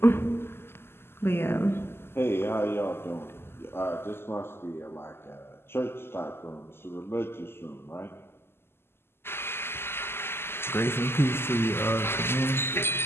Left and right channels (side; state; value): right; late; 0.12 ms